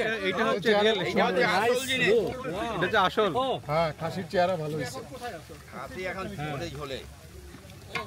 এইটা হচ্ছে রিয়েল, এটা হচ্ছে আসল। ও হ্যাঁ, খাসির চেহারা ভালো হয়েছে। খাসি এখন ঝোলে ঝোলে।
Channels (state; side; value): identical; both; correlation 1.00